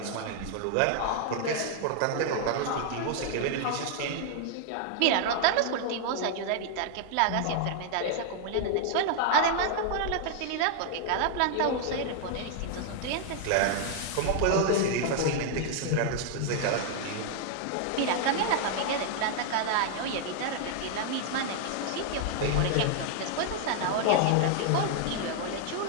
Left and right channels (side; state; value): both; different; correlation 0.00